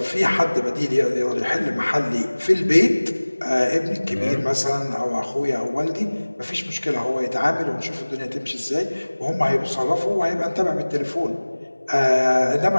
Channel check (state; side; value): inverted; both; correlation -1.00